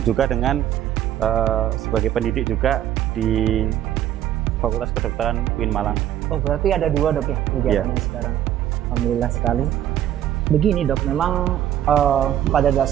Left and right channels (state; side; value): quieter; left; 11.5 dB